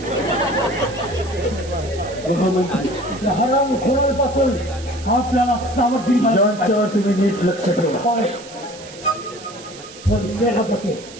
हराम खोरांपासून आपल्याला सावधगिरी बाळगावी यांच्यावर तुम्ही नीट लक्ष ठेवा लागेल. पण सेनापती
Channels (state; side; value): noise; right; hiss, 17 dB below the sound